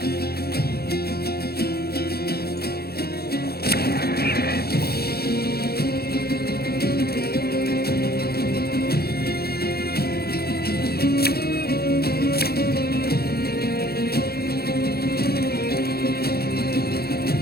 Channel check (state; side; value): late; right; 0.46 ms